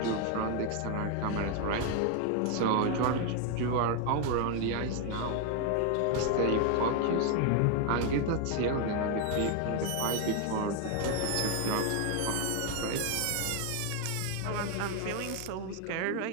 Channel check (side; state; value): both; different; correlation 0.01